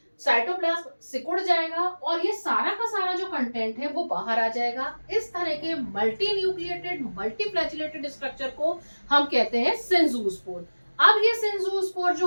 साइटोप्लाज्म सिकुड़ जाएगा, और ये सारा का सारा जो कंटेंट है वो बाहर आ जाएगा। इस तरह के multi nucleated multi flagellated structure को हम कहते हैं सिंजूस्पोर। अब ये सिंजूस्पोर जो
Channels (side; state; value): both; inverted; correlation -1.00